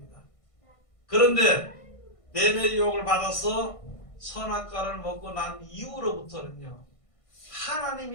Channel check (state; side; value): late; right; 1.5 ms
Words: 그런데 뱀의 유혹을 받아서 선악과를 먹고 난 이후로부터는요,